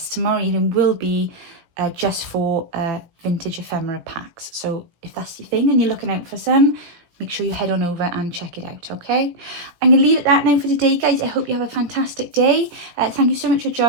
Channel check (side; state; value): left; late; 17 ms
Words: tomorrow evening will be just for vintage ephemera packs. So if that's your thing and you're looking out for some, make sure you head on over and check it out, okay? I'm going to leave it that now for today, guys. I hope you have a fantastic day. Thank you so much for